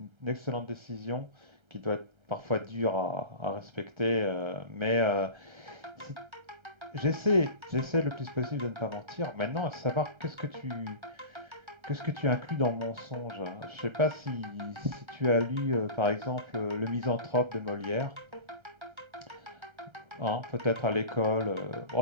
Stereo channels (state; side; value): late; left; 1.3 ms